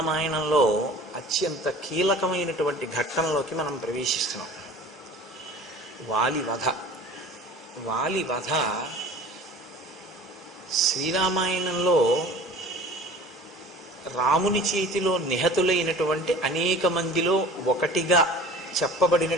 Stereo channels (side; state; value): both; normal; correlation 0.43